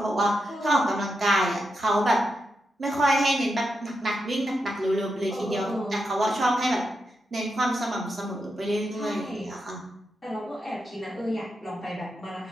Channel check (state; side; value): normal; both; correlation 0.86